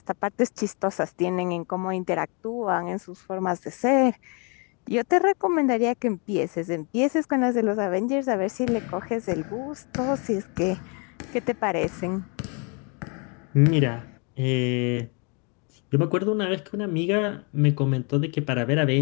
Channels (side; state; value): right; quieter; 34.5 dB